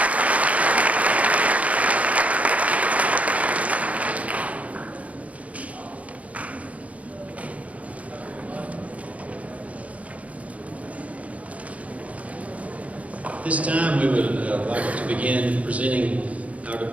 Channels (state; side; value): late; left; 0.067 ms